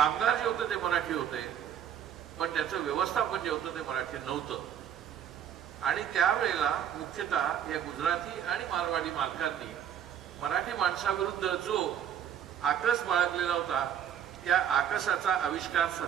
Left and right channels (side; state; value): left; quieter; 9.3 dB